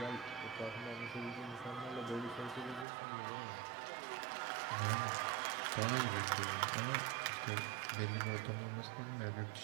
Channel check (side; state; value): left; drops out; at 2.9 s